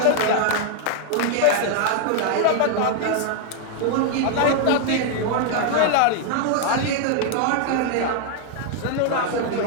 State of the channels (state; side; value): different; both; correlation 0.00